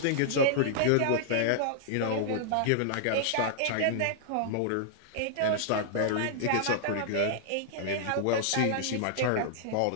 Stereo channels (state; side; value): different; both; correlation -0.01